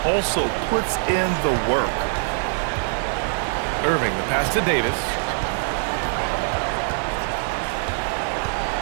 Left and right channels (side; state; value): left; silent; 56 dB below the other